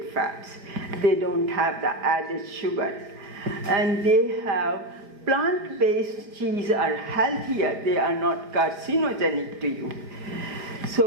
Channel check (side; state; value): left; late; 4.9 ms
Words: fats. They don't have the added sugars. And they have plant-based cheese are healthier. They are not carcinogenic to you.